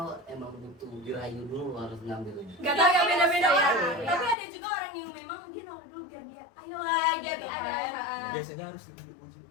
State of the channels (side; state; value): right; drops out; at 4.4 s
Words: emang butuh dirayu dulu harus ngambilnya? Gak tau ya, beda-beda Iya, orang. iya. Tapi ada juga orang yang memang dia nolak dulu biar dia ayolah Jadi gitu ada kan. Biasanya harus dibujuk.